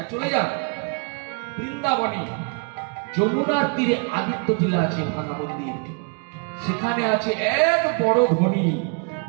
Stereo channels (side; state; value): left; quieter; 36.2 dB